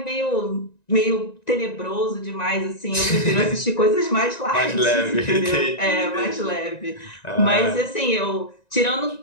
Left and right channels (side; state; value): right; late; 1.9 ms